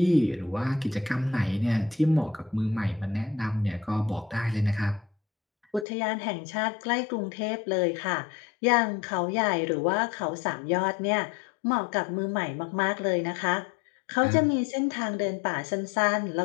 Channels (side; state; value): right; drops out; at 5.9 s